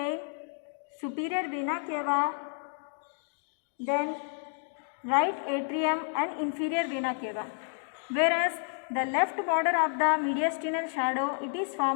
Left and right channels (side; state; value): right; silent; 57 dB below the other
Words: superior vena cava, then right atrium and inferior vena cava. Whereas the left border of the mediastinal shadow, it is